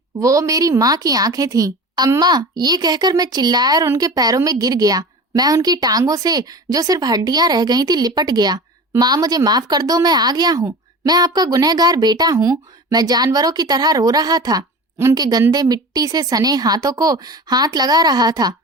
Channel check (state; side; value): normal; both; correlation 0.34